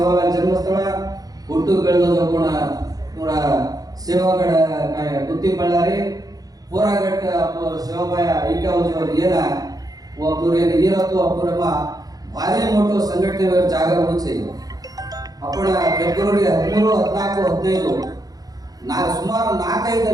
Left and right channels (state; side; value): late; left; 0.18 ms